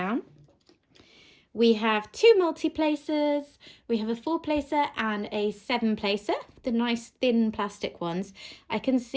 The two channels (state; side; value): identical; both; correlation 1.00